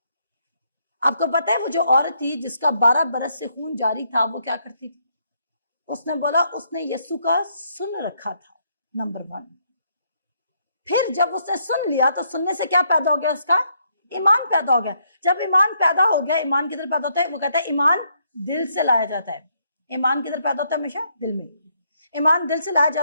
आपको पता है वो जो औरत थी जिसका 12 बरस से खून जारी था, वो क्या करती थी? उसने बोला उसने यीशु का सुन रखा था, नंबर 1। फिर जब उसने सुन लिया तो सुनने से क्या पैदा हो गया? उसका ईमान पैदा हो गया। जब ईमान पैदा हो गया, ईमान किधर पैदा होता है? वो कहता है ईमान दिल से लाया जाता है। ईमान किधर पैदा होता है? हमेशा दिल में। ईमान दिल से लाया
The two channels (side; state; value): both; inverted; correlation -0.74